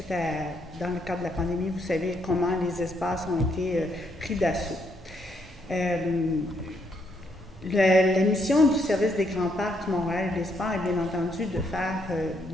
à, dans le cadre de la pandémie, vous savez comment les espaces ont été pris d'assaut. La mission du service des grands parcs du Montréal et des Sports est bien entendu de faire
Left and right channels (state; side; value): normal; both; correlation 0.74